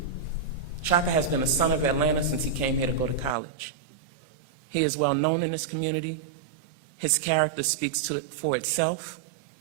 Shaka has been a son of Atlanta since he came here to go to college. He is well known in this community. His character speaks for itself.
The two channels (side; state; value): left; drops out; at 3.4 s